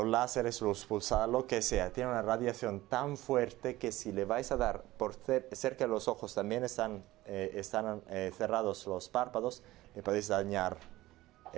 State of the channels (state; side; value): quieter; left; 17.2 dB